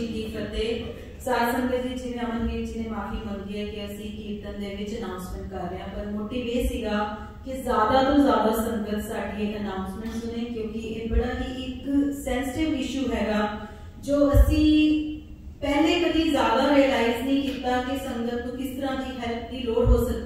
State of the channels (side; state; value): both; identical; correlation 1.00